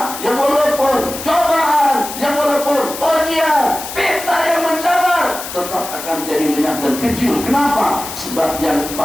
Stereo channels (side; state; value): left; noise; hiss, 9 dB below the sound